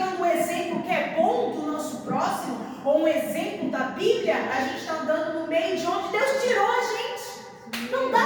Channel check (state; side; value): identical; both; correlation 1.00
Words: um exemplo que é bom do nosso próximo, ou um exemplo da Bíblia, a gente está andando no meio de onde Deus tirou a gente. Não